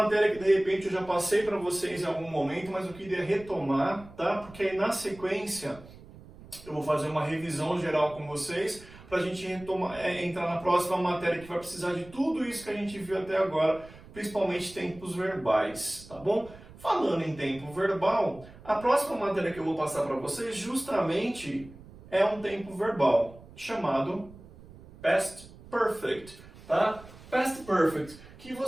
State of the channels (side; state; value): right; noise; rumble, 20 dB below the sound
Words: que de repente eu já passei para vocês em algum momento, mas eu queria retomar, tá? Porque aí na sequência eu vou fazer uma revisão geral com vocês para a gente entrar na próxima matéria que vai precisar de tudo isso que a gente viu até agora, principalmente tempos verbais, tá bom? Falando em tempo verbal, a próxima matéria que eu vou passar para vocês justamente é um tempo verbal chamado Past Perfect, tá? Past Perfect, que